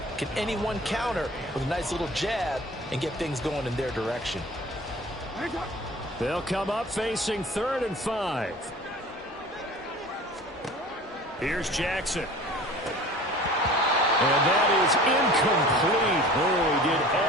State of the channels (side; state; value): both; normal; correlation 0.43